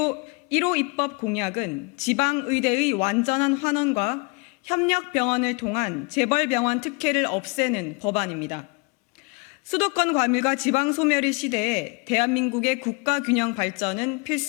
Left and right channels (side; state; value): right; quieter; 30.7 dB